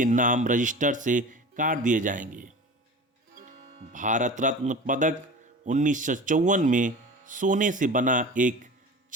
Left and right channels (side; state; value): both; normal; correlation 0.35